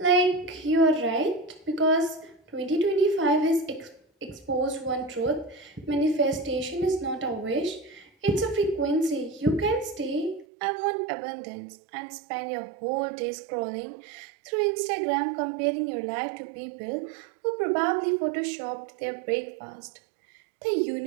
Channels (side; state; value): left; drops out; at 10.5 s